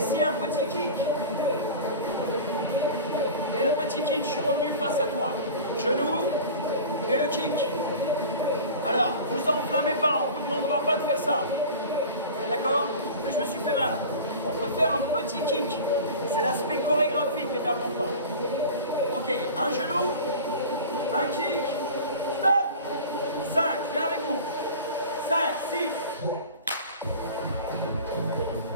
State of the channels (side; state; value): both; inverted; correlation -0.36